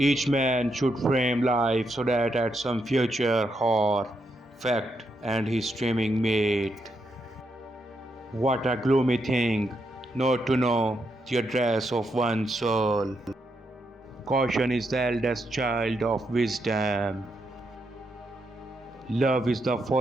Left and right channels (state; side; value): normal; both; correlation 0.81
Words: man should frame life so that at some future hour, fact and his streaming mate. What a gloomy thing, not to know the address of one's soul. Caution is the eldest child of wisdom. Love is the